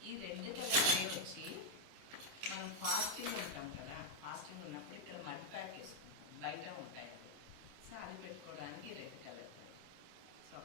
ఈ 2 కలర్ ట్రే వచ్చి మనం ఫాస్టింగ్ ఉంటాం కదా, ఫాస్టింగ్ ఉన్నప్పుడు ఇక్కడ మడ్ ప్యాక్ వేసుకుంటాం, బయట ఉంటాయి అవి. సో అది పెట్టుకోవడానికి 2 కలర్ ట్రే. సో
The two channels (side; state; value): left; late; 26 ms